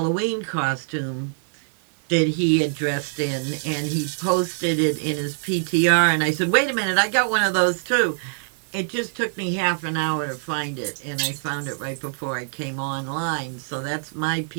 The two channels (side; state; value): left; silent; 63 dB below the other